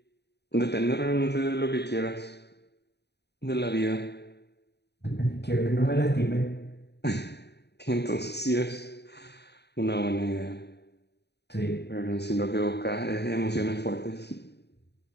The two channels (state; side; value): late; right; 0.49 ms